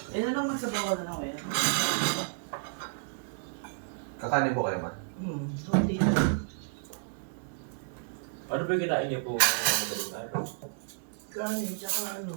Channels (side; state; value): left; silent; digital silence